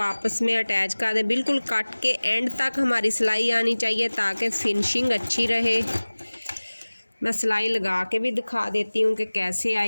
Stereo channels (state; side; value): inverted; both; correlation -1.00